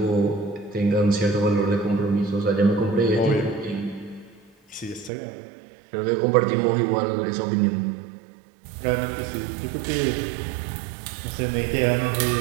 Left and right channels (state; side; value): drops out; left; at 5.1 s